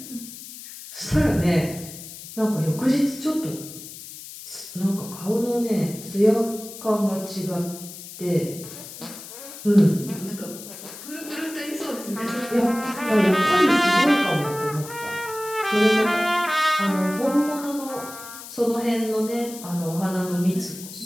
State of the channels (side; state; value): left; noise; hiss, 13 dB below the sound